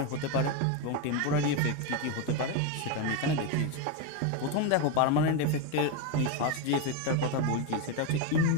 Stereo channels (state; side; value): different; both; correlation 0.03